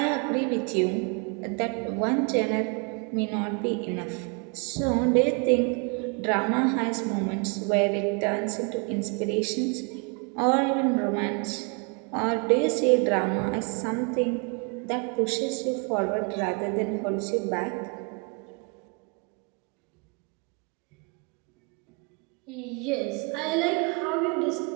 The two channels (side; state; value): left; quieter; 34.0 dB